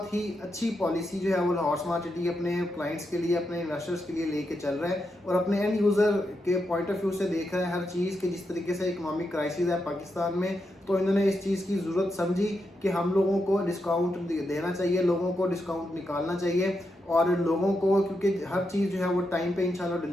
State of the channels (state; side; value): normal; both; correlation 0.85